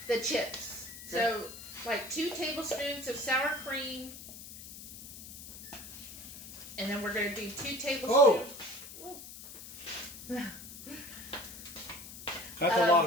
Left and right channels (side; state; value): left; noise; hiss, 13 dB below the sound